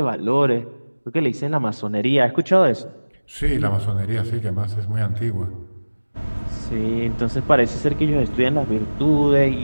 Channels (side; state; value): both; inverted; correlation -1.00